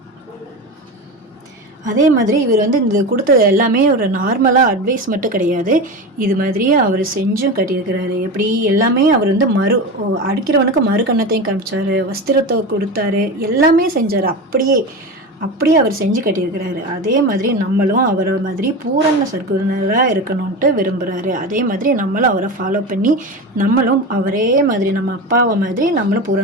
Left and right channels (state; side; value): normal; both; correlation 0.24